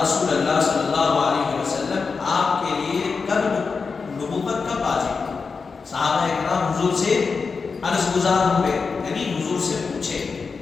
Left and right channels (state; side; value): quieter; right; 4.9 dB